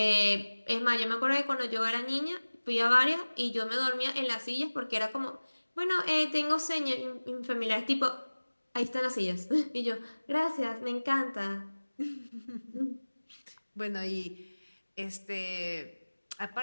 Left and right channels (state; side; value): inverted; both; correlation -1.00